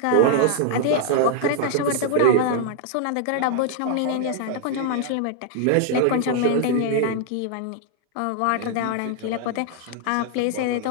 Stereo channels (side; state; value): both; different; correlation 0.00